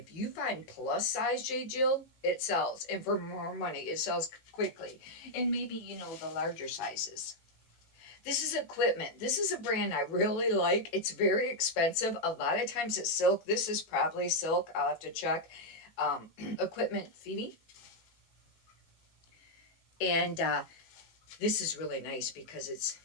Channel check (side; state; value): right; late; 18 ms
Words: you find plus size J. Jill, it sells, and for more money, it sells quickly. And maybe the larger sizes. This is equipment. This is a brand I really like. It's very expensive. A lot of times it's silk. This is probably silk. I'll have to check. Equipment Phoebe. And this is really nice because it's